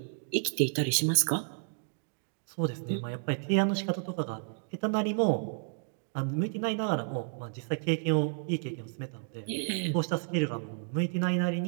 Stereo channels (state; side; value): silent; left; 57 dB below the other